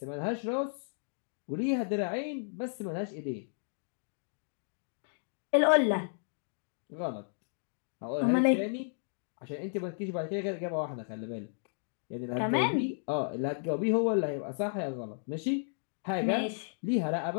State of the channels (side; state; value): right; silent; digital silence